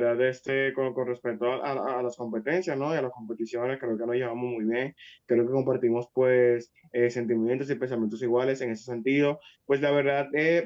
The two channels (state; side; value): identical; both; correlation 1.00